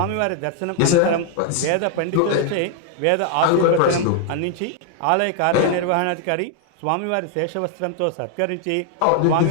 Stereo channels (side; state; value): both; different; correlation 0.00